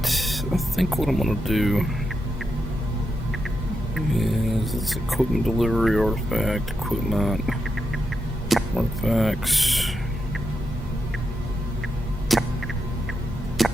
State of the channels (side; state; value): both; normal; correlation 0.85